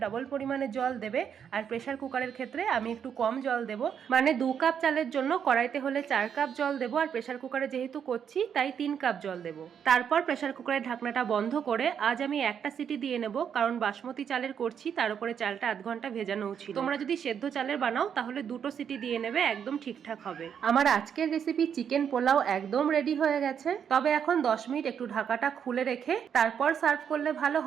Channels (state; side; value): quieter; left; 8.0 dB